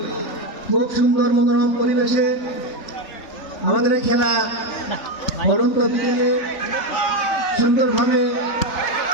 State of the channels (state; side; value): late; right; 3.5 ms